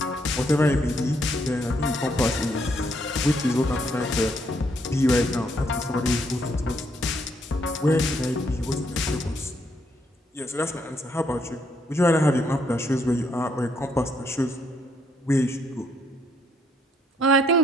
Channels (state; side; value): normal; both; correlation 0.72